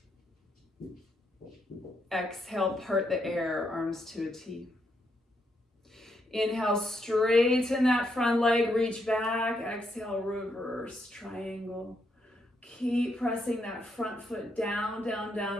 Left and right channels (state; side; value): normal; both; correlation 0.78